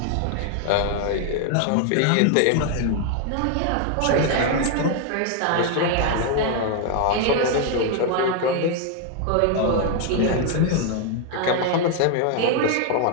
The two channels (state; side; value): different; both; correlation 0.01